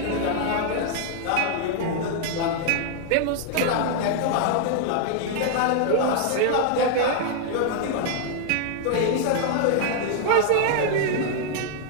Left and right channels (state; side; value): different; both; correlation 0.00